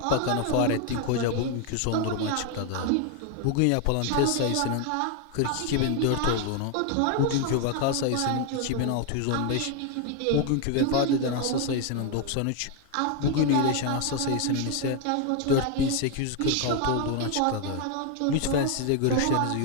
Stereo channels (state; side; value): different; both; correlation 0.01